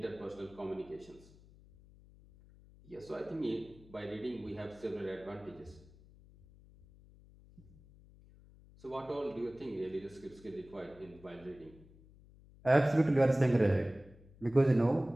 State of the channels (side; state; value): left; noise; hum, 24 dB below the sound